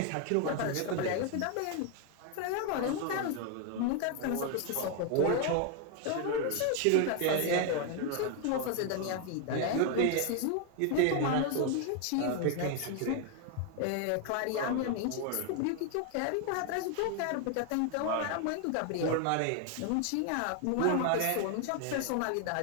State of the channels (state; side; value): different; both; correlation 0.01